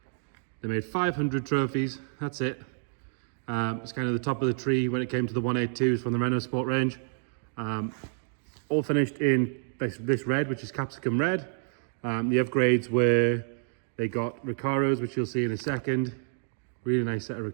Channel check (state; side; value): silent; left; digital silence